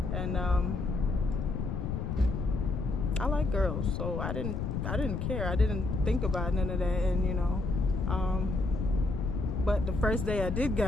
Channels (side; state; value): left; noise; rumble, 2 dB below the sound